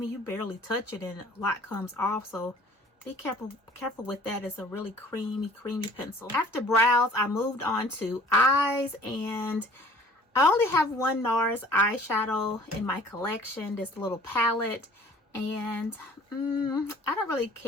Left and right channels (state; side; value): normal; both; correlation 0.51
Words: You barely touch it and a lot comes off, so be careful with that. It's a really creamy pencil. After brows, I moved on to eyes, and I only have one NARS eyeshadow in my collection, this little palette, and I don't really